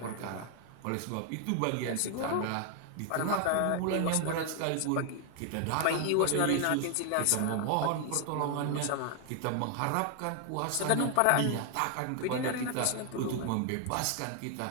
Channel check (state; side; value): different; both; correlation 0.00